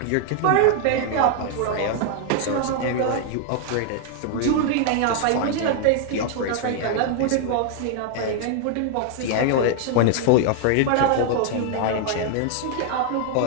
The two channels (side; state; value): both; different; correlation 0.00